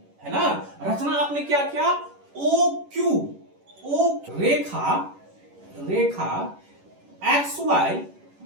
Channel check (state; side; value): late; left; 11 ms